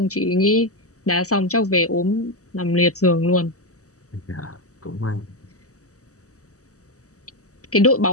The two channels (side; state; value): right; late; 0.66 ms